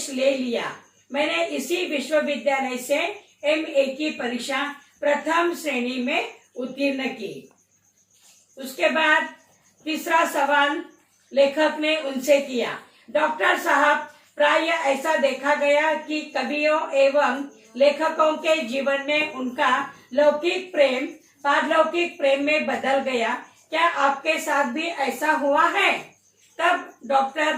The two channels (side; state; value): both; identical; correlation 1.00